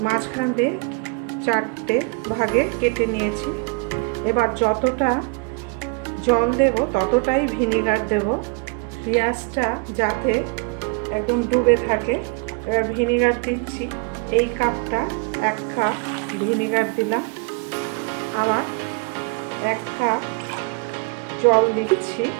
মাঝখান দিয়ে 4টে ভাগে কেটে নিয়েছি। এবার যতটা জল দেব ততটাই ভিনিগার দেব, পেঁয়াজটা যাতে একদম ডুবে থাকে। এবার ভিনিগার দিচ্ছি, এই কাপটা 1 কাপ ভিনিগার দিলাম। আবার 1 কাপ জল দিচ্ছি,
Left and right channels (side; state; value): left; quieter; 32.3 dB